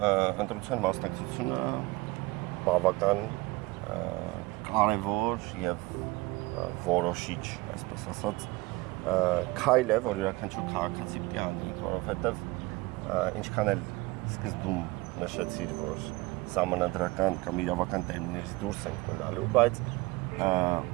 ընտրության մասնակցությունը բավական կարևոր եւ որոշիչ, այսպես ասած, քայլ է, որ յուրաքանչյուր քաղաքացի պիտի անի, որովհետեւ ինչքան էլ սկզբում նշեցիր, որ սահմանադրական կամ իրավական տերմիններից դուրս ենք մնալու, բայց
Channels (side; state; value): left; quieter; 21.1 dB